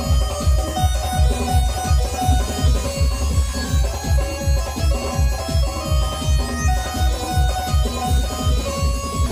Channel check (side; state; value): both; identical; correlation 1.00